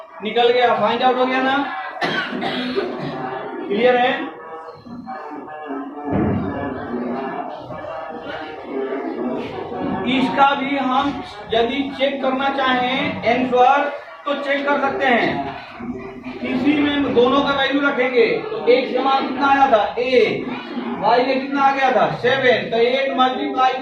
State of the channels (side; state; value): both; identical; correlation 1.00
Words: निकल गया, फाइंड आउट हो गया ना। क्लियर है। इसका भी हम यदि चेक करना चाहें आंसर तो चेक कर सकते हैं। किसी में दोनों का वैल्यू रखेंगे तो x का मान कितना आया था, 8, y में कितना आ गया था, 7। तो 8 मल्टीप्लाई